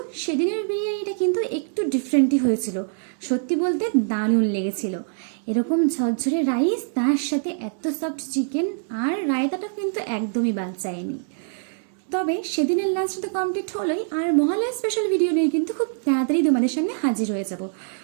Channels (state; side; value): silent; left; digital silence